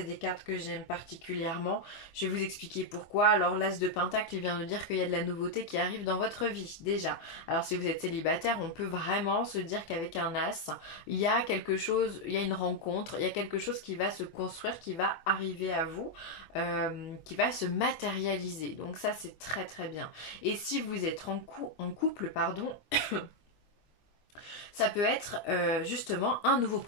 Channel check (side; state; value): right; late; 24 ms